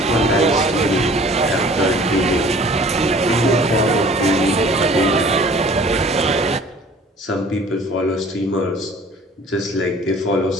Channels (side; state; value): both; normal; correlation 0.50